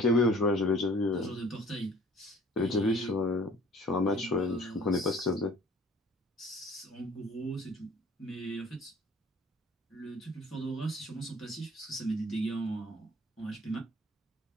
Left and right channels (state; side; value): normal; both; correlation 0.52